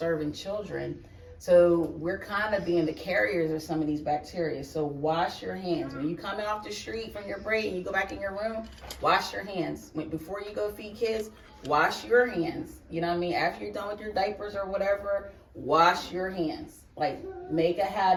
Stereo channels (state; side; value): identical; both; correlation 1.00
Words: children. So we're kind of being the carriers of some of these bacteria. So wash your hands. When you coming off the street from your break and you go back in your room, wash your hands. Before you go feed kids, wash your hands. You know what I mean? After you're done with your diapers or whatever, wash your hands. Like, make a